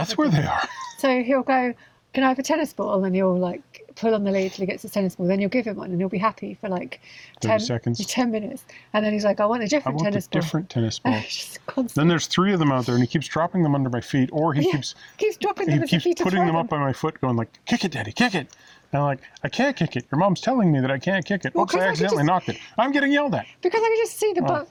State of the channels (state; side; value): identical; both; correlation 1.00